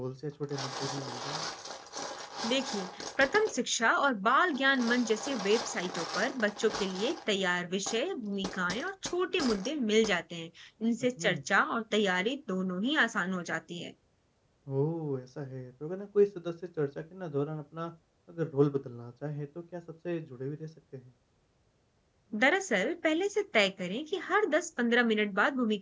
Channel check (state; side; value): identical; both; correlation 1.00